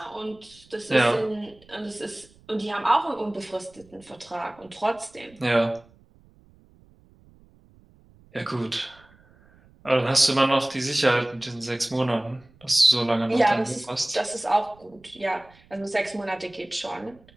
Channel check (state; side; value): noise; right; rumble, 28 dB below the sound